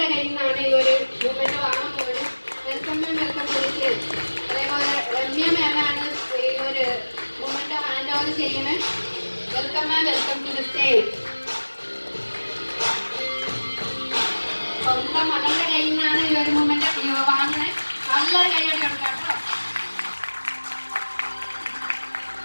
കയ്യിൽ നിന്നാണ് ഈ ഒരു മൂവ്മെന്റ് വാങ്ങാൻ പോകുന്നത്. വെൽക്കം മാം, വെൽക്കം വിളിച്ച്. അതേപോലെ രമ്യ മാമാണ് ഈ ഒരു മൂവ്മെന്റ് ഹാൻഡ് ഓവർ ചെയ്യുന്നത്. Welcome ma'am, welcome to the stage. സ്വന്തം മകളുടെ കയ്യിൽ നിന്നാണ് ഈ ഒരു മൂവ്മെന്റ് വാങ്ങണേ. നല്ലൊരു കൈയ്യടി കൊടുക്കാം കേട്ടോ.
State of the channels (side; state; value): both; inverted; correlation -1.00